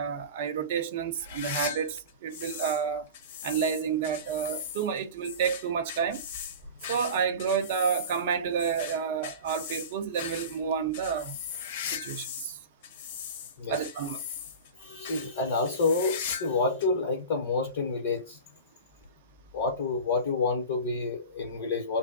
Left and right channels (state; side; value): inverted; both; correlation -0.33